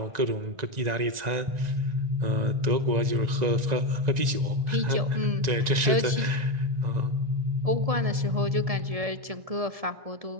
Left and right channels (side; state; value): left; late; 1.9 ms